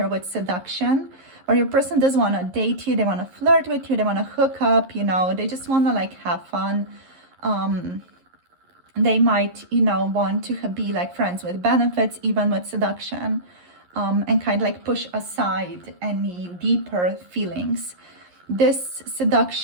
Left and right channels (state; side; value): late; left; 11 ms